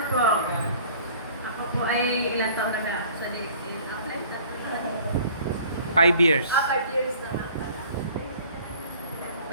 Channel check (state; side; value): inverted; both; correlation -0.51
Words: po, ako po ay ilang taon na ba? Sa 5 years. 5 years na nga pala.